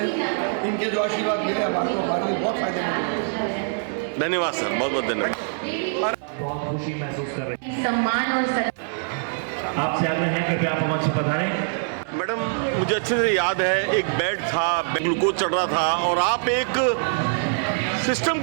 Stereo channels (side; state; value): left; silent; digital silence